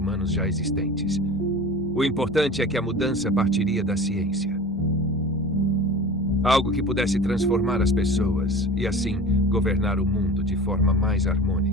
já existentes. O importante é que a mudança partiria da ciência. Algo que pudesse transformar as pessoas e, assim, governar o mundo de forma mais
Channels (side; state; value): both; normal; correlation 0.36